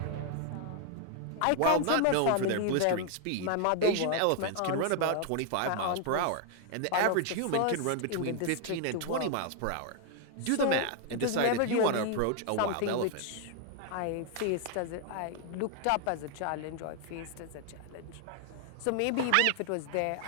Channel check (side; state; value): both; different; correlation 0.00